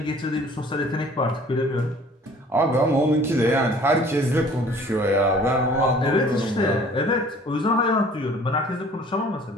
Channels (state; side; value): normal; both; correlation 0.51